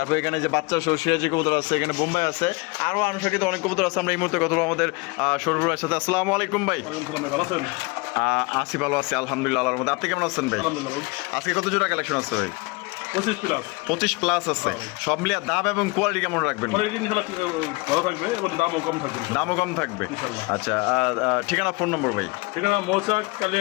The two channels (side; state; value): right; quieter; 26.3 dB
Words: এখানে যে বাচ্চা সহ সিরাজি কবুতর আছে, এখানে বোম্বাই আছে, আরও আনুষঙ্গিক অনেক কবুতর আছে। আমরা এই মুহূর্তে কথা বলবো আমাদের শরীফুল ভাইয়ের সাথে। আসসালামু আলাইকুম ভাই। আসি ভালো আছি আলহামদুলিল্লাহ আল্লাহর মধ্যে। আপনি কেমন আছেন ভাই? আজকে কত জোড়া কালেকশন আছে ভাই? 25 প্লাস আছে। সব মিলিয়ে দাম এবং কোয়ালিটি কেমন রাখবেন? দামও কম থাকবে। আচ্ছা, ঠিকানা ফোন নম্বর ভাই? ঠিকানা মৌচাক